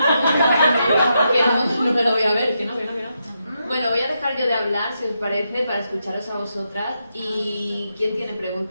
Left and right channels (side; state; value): both; inverted; correlation -0.83